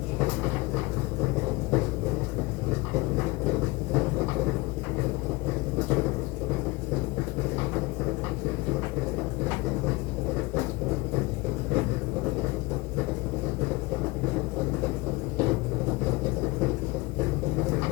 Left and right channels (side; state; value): right; quieter; 23.3 dB